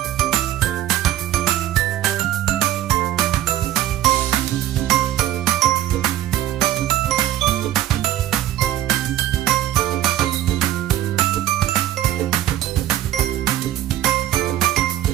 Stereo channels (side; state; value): left; quieter; 12.9 dB